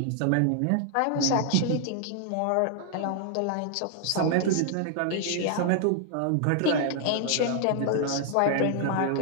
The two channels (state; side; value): different; both; correlation 0.00